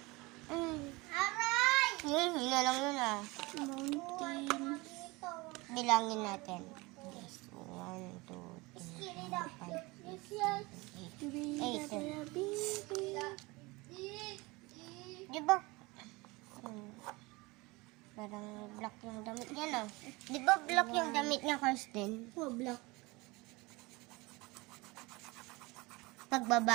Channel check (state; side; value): quieter; left; 23.7 dB